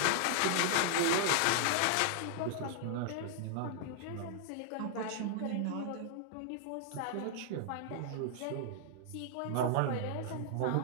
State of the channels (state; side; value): different; both; correlation -0.01